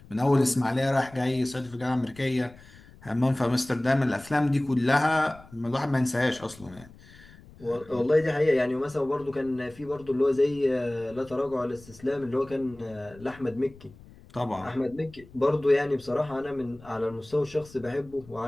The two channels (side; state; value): left; noise; rumble, 22 dB below the sound